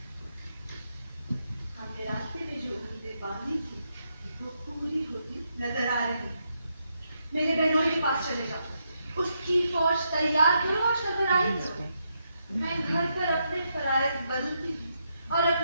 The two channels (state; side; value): inverted; both; correlation -0.80